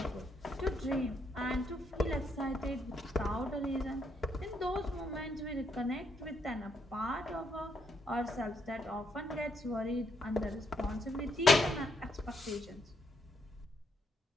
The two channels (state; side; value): normal; both; correlation 0.76